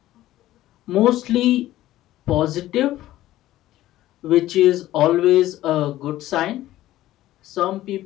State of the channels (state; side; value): quieter; right; 14.8 dB